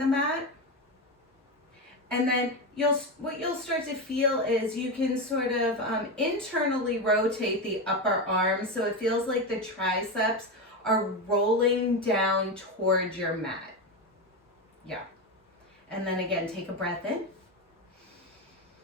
mat. And then what you'll start to feel is you can sort of internally rotate the upper arm so it feels like the triceps are rolling down towards your mat. Yeah. And then again, take a breath in.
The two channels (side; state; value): both; normal; correlation 0.15